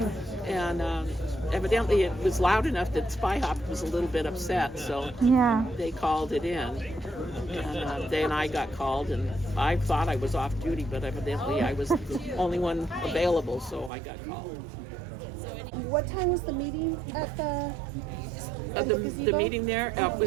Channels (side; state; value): left; drops out; at 13.9 s